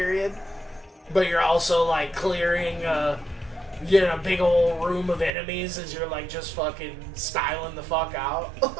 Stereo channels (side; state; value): left; drops out; at 5.3 s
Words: But you're also, like, clearing, big old room of enemies as you're, like, just fucking styling the fuck out.